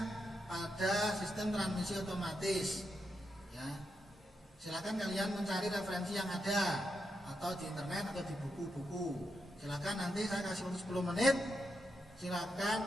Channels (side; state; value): both; normal; correlation 0.84